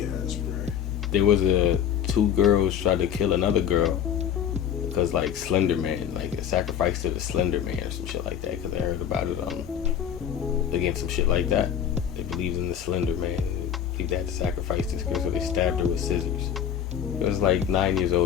ass, bro. There was two girls tried to kill another girl because like Slender Man, like a sacrifice to the Slender Man or some shit like that. Because I heard about it again, some shit like that. They believed in the Slender Man. They believed they had to sacrifice this girl, so they stabbed her with scissors. It was like 9 years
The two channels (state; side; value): quieter; right; 9.1 dB